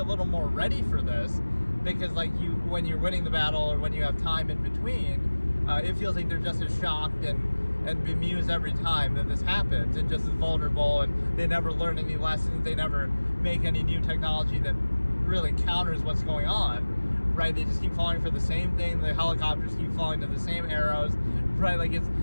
little more ready for this, because like when you're winning the battle or when you have time in between, it feels like they're just as shocked and bemused every time that this happens, and just as vulnerable, and they never learn any lessons, they never make any new technology that really counters what's going on. Right, they just keep falling for the same thing. The helicopters keep falling to the same arrows. Right, like it's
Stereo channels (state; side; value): inverted; both; correlation -1.00